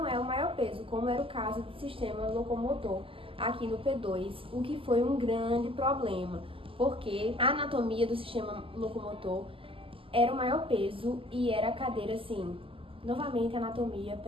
é o maior peso, como era o caso do sistema locomotor aqui no P2, o que foi um grande problema, porque a anatomia do sistema locomotor era o maior peso e era a cadeira assim, novamente anatomia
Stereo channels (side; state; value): left; late; 0.26 ms